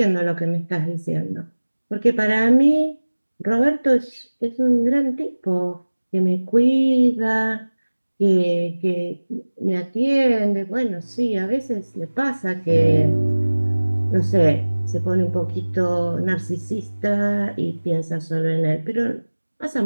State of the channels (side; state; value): both; inverted; correlation -1.00